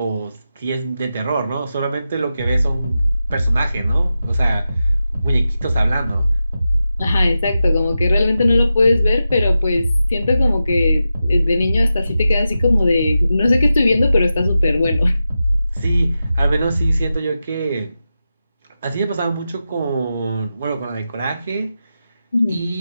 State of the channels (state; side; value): inverted; both; correlation -0.91